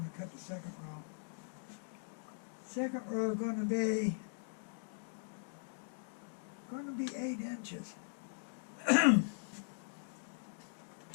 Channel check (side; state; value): right; silent; digital silence